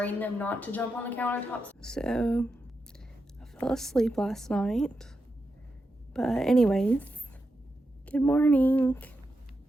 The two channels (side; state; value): both; normal; correlation 0.87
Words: them not to jump on the countertops. So I fell asleep last night, but anyways, good morning.